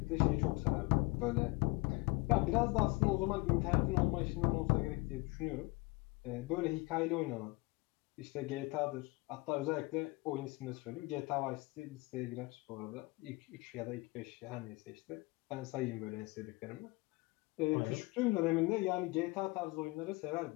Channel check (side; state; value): right; quieter; 24.6 dB